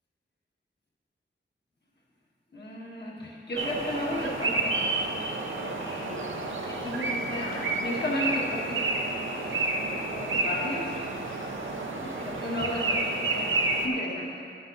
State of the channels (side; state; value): both; normal; correlation 0.01